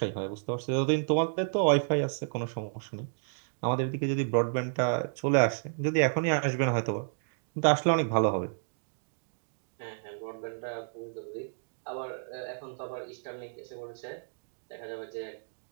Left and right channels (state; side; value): silent; left; digital silence